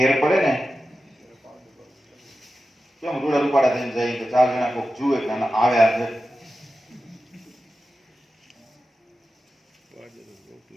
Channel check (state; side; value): normal; both; correlation 0.92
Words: પડે ને કેમ રૂડા રૂપાડા થઈને જાય કે ચાર જણા કોઈક જુએ કે આના આવ્યા છે